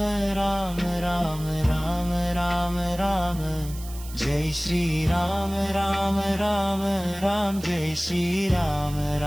राम राम राम राम राम जय श्री राम राम राम राम जय श्री राम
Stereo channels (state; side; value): noise; right; hiss, 16 dB below the sound